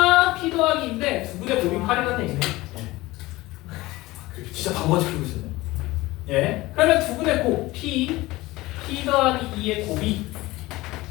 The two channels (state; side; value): quieter; right; 19.4 dB